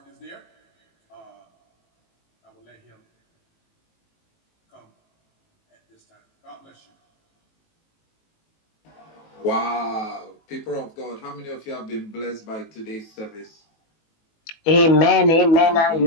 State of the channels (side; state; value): right; late; 18 ms